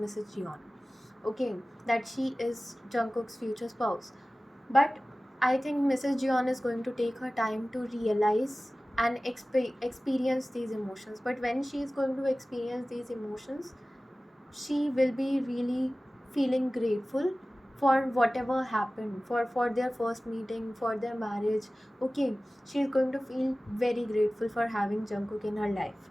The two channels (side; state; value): both; normal; correlation 0.97